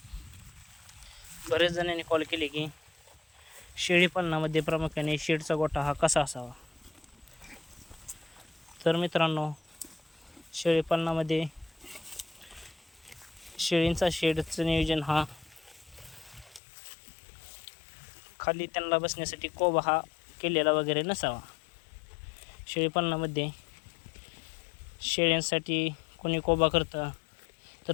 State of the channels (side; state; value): right; drops out; at 16.6 s